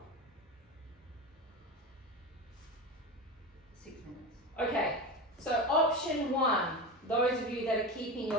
6 minutes. Okay, so option 1, those of you that are keeping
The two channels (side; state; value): both; normal; correlation 0.24